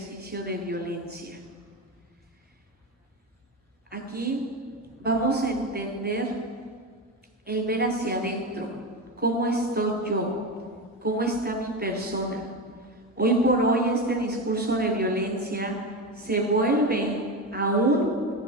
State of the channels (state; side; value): normal; both; correlation 0.19